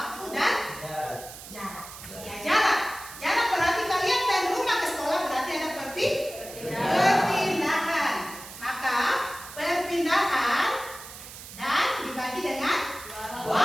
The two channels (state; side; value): noise; right; hiss, 14 dB below the sound